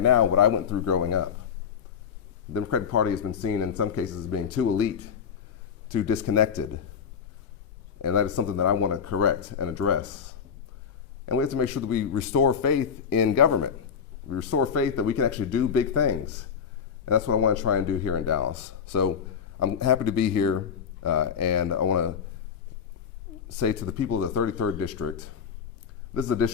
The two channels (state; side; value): quieter; right; 7.1 dB